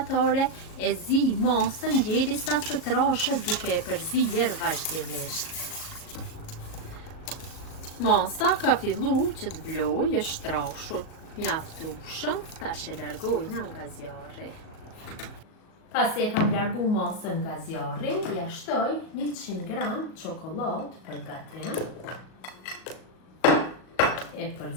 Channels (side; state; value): right; late; 38 ms